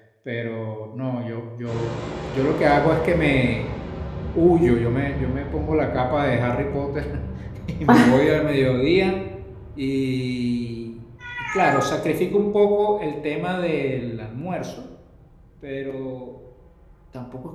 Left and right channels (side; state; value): both; identical; correlation 1.00